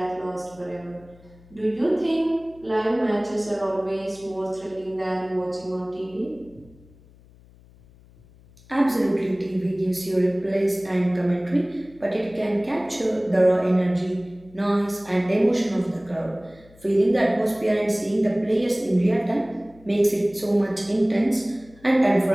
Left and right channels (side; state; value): left; noise; hum, 26 dB below the sound